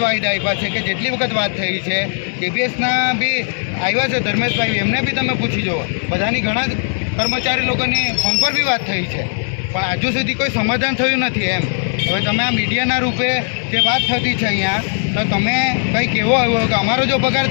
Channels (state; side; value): silent; right; 65 dB below the other